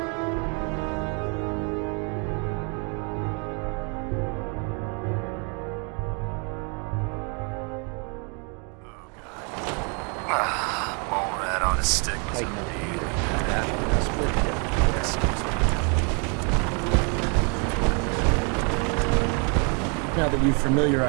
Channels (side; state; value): left; quieter; 36.1 dB